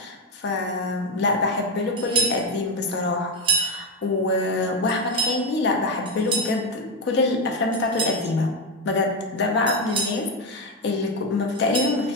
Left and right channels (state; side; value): normal; both; correlation 0.10